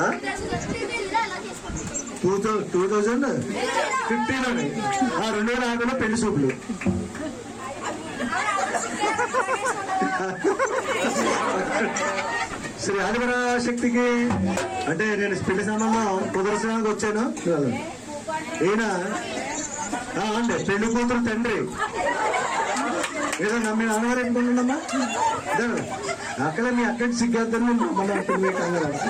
2015 అని 2006 పెళ్లి చూపులు. శ్రీ ఆదిపరాశక్తికి అంటే నేను పెళ్లి సంబంధం కుదర్శనానికి వచ్చాను. ఈయన అండి పెళ్లి కూతురు తండ్రి. ఏదో మీ నాన్నగారు ఎందుకుంటుండమ్మా అక్కడ మీ అక్కడి సిగ్గేద్దని మన మీకు అందరూ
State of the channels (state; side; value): identical; both; correlation 1.00